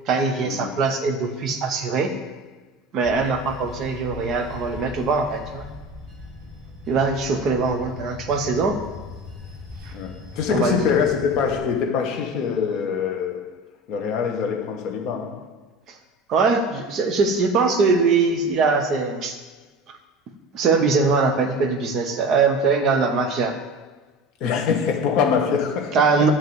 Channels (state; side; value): normal; both; correlation 0.33